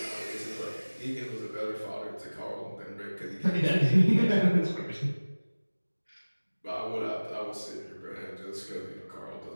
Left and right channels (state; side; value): inverted; both; correlation -1.00